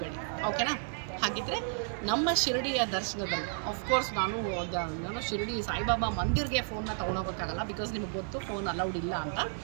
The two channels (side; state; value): left; silent; 56 dB below the other